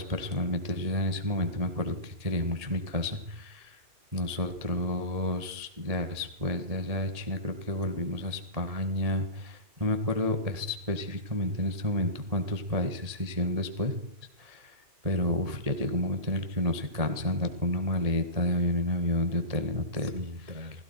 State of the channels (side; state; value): left; late; 1.8 ms